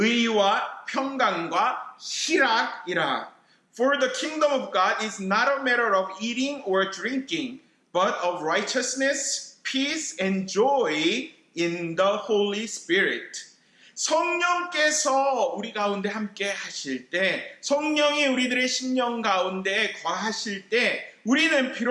평강과 희락이라. For the kingdom of God is not a matter of eating or drinking, but of righteousness, peace, and joy in the Holy Spirit. 성령께서 우리 가운데 함께 하실 때, 성령이 우리들의 심령 가운데 거하실 때, 우리는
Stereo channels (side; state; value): both; identical; correlation 1.00